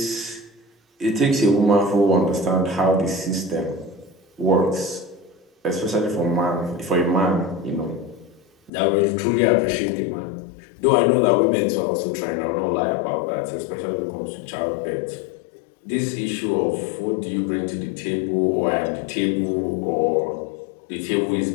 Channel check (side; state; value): right; drops out; at 8.7 s